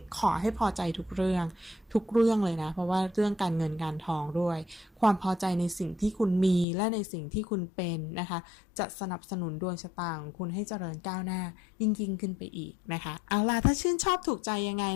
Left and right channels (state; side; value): drops out; right; at 6.7 s